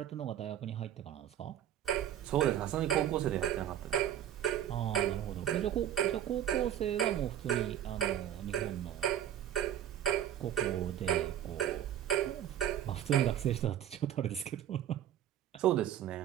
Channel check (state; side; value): quieter; left; 10.7 dB